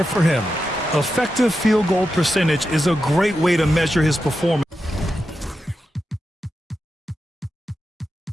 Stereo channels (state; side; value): normal; both; correlation 0.89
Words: for him. Effective field goal percentage is a great way to measure his performance